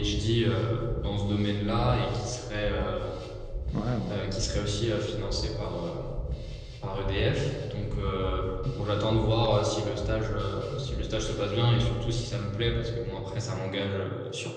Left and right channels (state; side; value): identical; both; correlation 1.00